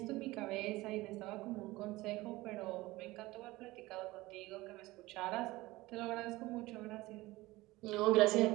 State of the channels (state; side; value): quieter; left; 19.5 dB